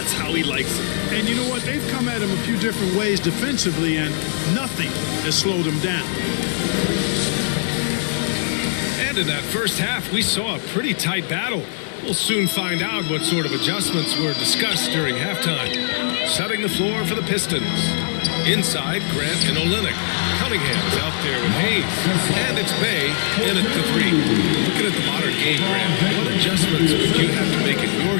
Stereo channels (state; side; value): silent; right; digital silence